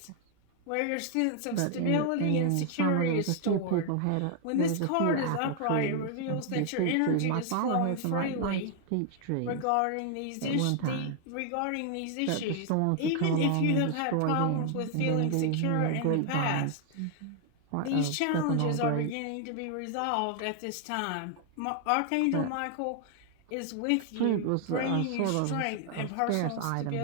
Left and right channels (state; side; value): different; both; correlation 0.00